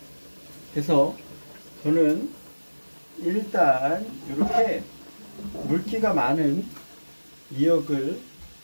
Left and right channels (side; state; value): both; inverted; correlation -1.00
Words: 그래서 저는 일단 이렇게 물기가 많은 미역을